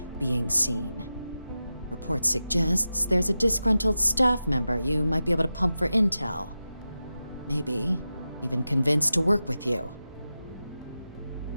being seen. Report suggests there's a disgruntled staff member you might be able to pump for intel. Maybe even convince to work with you.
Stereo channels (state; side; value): inverted; both; correlation -0.92